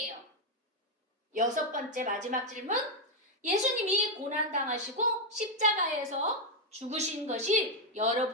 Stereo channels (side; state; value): both; normal; correlation 0.02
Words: 여섯 번째 마지막 질문. 예수님이 고난당하시고 십자가에서 죽으신 것이